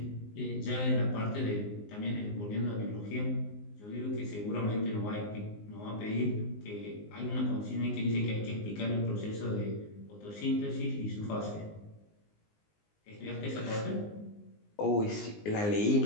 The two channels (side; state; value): right; late; 19 ms